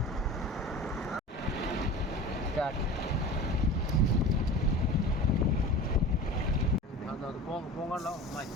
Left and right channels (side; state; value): both; normal; correlation 0.35